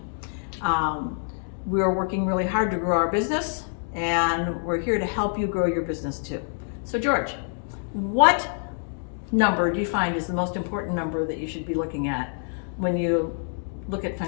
We're working really hard to grow our business, and we're here to help you grow your business too. So George, what number do you find is the most important number that you should be looking at when you look at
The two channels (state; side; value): silent; right; 61 dB below the other